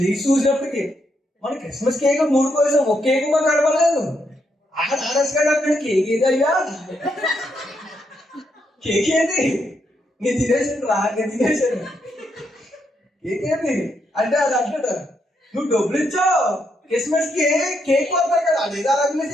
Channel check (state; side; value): normal; both; correlation 0.79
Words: చూసినప్పటికి మన క్రిస్మస్ కేక్ 3 కోసం ఒక కేక్ మాకు కనపడలేదు. ఆర్ఎస్ గారు అక్కడ కేక్ ఏది అయ్యా, కేక్ ఏది? నేను తినేసాను రా, నేను తినేసాను. కేక్ ఏది అంటే అది అంటాడు, నువ్వు డబ్బులు ఇచ్చావు క్రిస్మస్ కి కేక్ కొడతారు కదా, అది ఏదో రంగులు